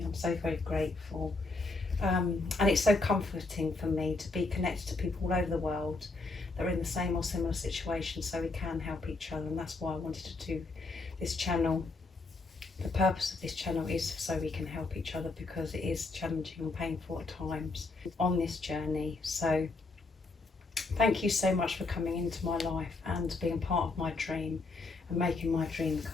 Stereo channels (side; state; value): right; quieter; 3.5 dB